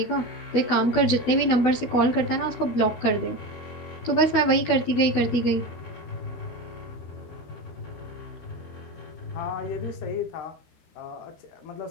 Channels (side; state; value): right; late; 13 ms